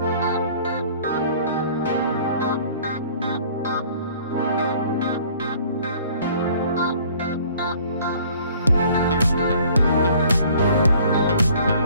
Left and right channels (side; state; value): both; inverted; correlation -0.54